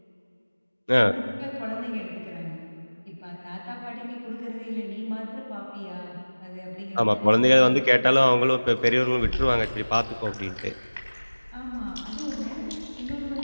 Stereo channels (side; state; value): both; inverted; correlation -1.00